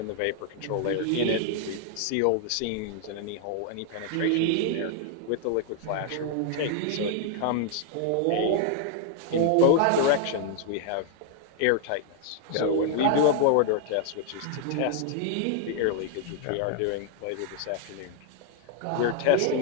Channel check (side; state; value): both; different; correlation 0.00